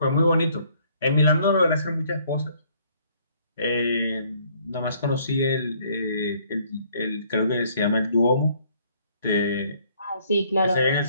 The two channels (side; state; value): both; inverted; correlation -0.63